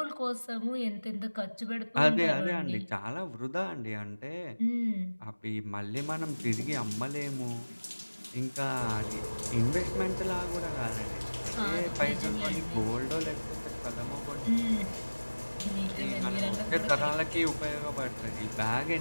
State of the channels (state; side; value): inverted; both; correlation -1.00